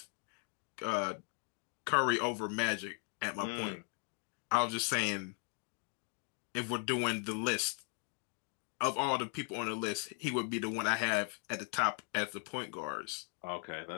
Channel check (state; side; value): quieter; right; 37.6 dB